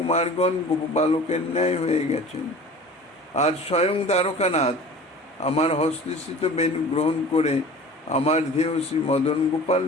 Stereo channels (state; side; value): normal; both; correlation 0.41